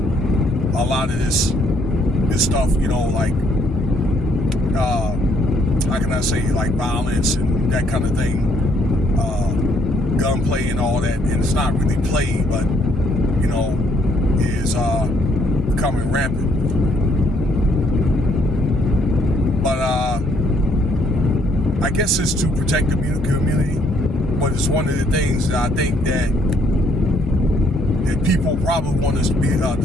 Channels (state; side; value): normal; both; correlation 0.68